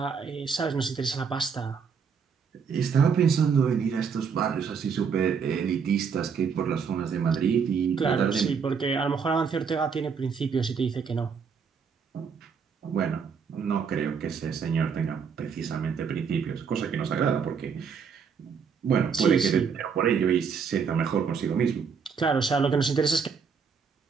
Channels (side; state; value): left; quieter; 6.2 dB